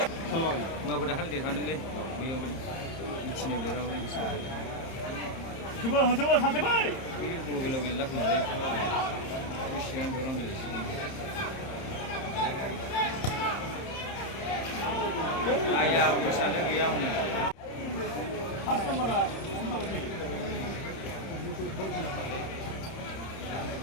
सालबागोन माबो दाखालि देरहादोंलै बैयावहाय मिथिनायाव देरहाबोदों जोबो सासे बै बैयो गल गेलेला खोमालै बेसेबां दरं गेलेसिगोन आया उसानो गैया हनै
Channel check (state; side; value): late; right; 30 ms